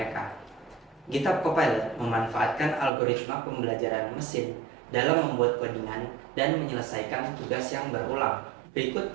GitHub Copilot memanfaatkan algoritma pembelajaran mesin dalam membuat codingan dan menyelesaikan tugas yang berulang. Berikut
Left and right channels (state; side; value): drops out; left; at 2.9 s